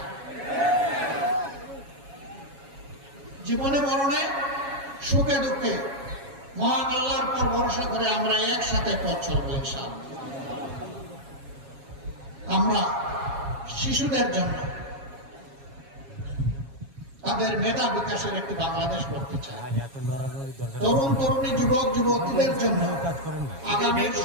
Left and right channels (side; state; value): left; late; 7.3 ms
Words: জীবনে মরণে, সুখে দুঃখে মহান আল্লাহর পর ভরসা করে আমরা একসাথে পথ চলবো ইনশাআল্লাহ। আমরা শিশুদের জন্য তাদের মেধা বিকাশের একটি বাংলাদেশ করতে চাই। তরুণ তরুণী, যুবক যুবতীদের জন্য আগামী